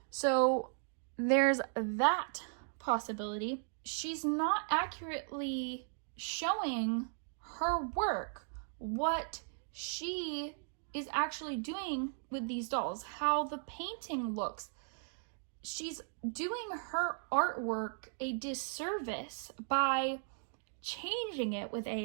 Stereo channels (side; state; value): left; silent; digital silence